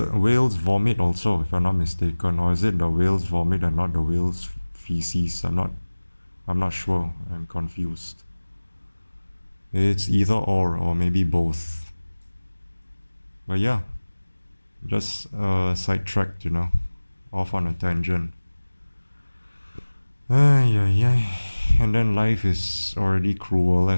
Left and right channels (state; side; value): inverted; both; correlation -1.00